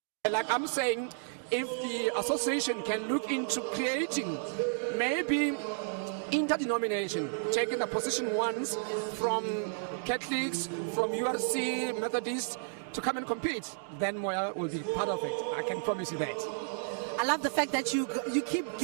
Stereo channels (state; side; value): silent; left; digital silence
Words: like I'm saying, if the association can look into creating maybe interdenomination, taking the position ones from Catholics, from URC, Methodists, to come and compete, then Moya will be part of it. I can promise you that. I love the fact that you keep